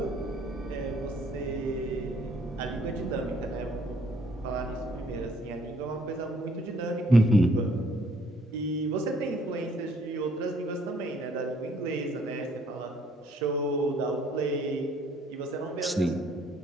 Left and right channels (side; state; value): both; normal; correlation 0.64